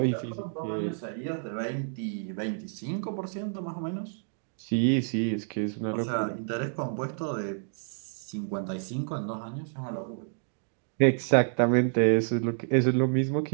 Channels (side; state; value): left; silent; digital silence